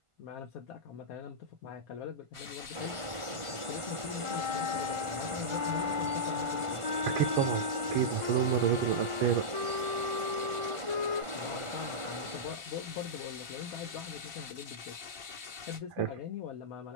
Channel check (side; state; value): left; late; 1.5 ms